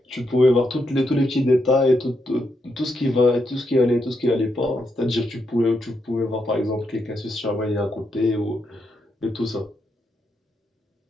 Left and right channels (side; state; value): both; normal; correlation 0.81